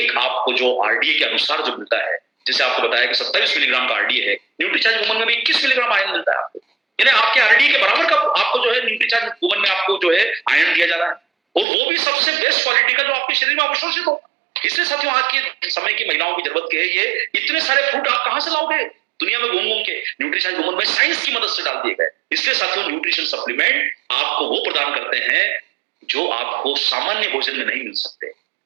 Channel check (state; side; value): drops out; left; at 11.7 s